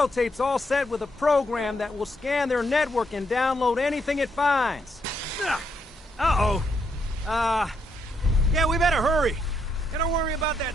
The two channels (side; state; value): both; normal; correlation 0.77